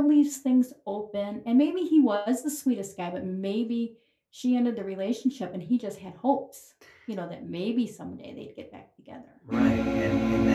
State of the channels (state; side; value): identical; both; correlation 1.00